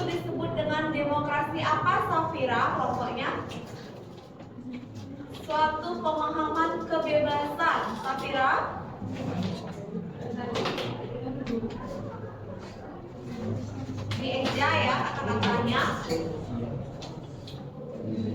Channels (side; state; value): both; identical; correlation 1.00